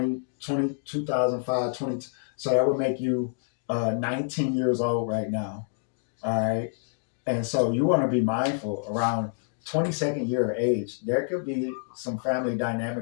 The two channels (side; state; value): right; silent; digital silence